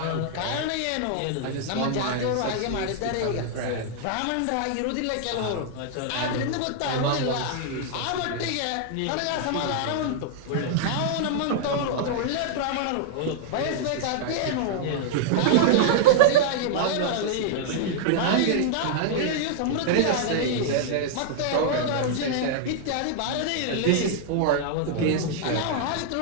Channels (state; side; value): different; both; correlation -0.01